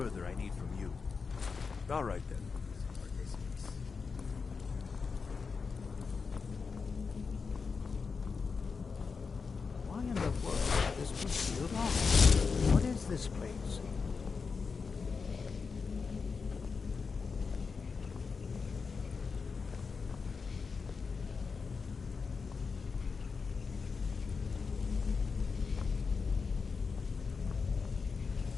I need from you. All right, then. Why in the world is this was sealed off? What is this place?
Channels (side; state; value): right; quieter; 5.1 dB